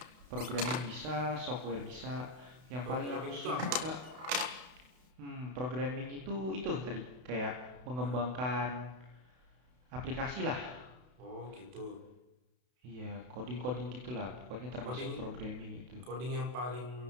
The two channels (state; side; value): late; left; 32 ms